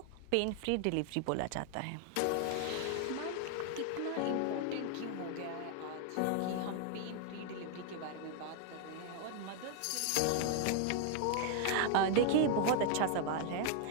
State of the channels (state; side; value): different; both; correlation 0.00